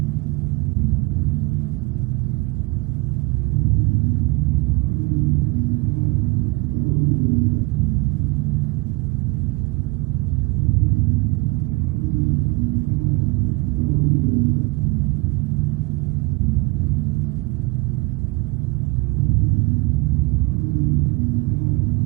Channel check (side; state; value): left; quieter; 25.3 dB